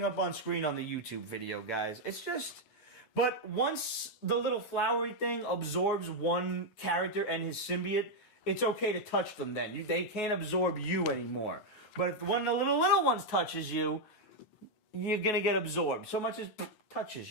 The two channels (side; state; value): right; late; 9.3 ms